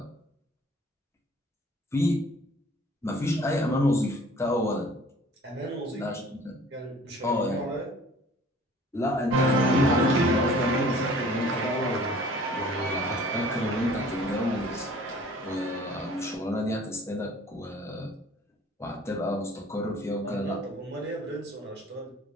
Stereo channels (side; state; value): both; normal; correlation 0.51